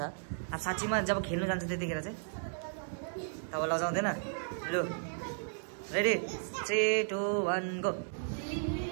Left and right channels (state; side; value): silent; left; digital silence